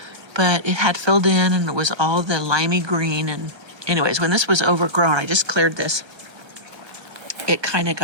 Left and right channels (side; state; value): left; late; 1.3 ms